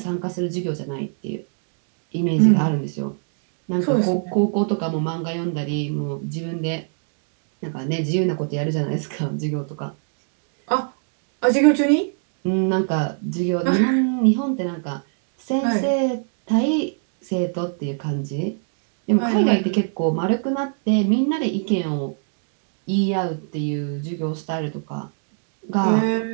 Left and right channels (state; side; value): silent; left; digital silence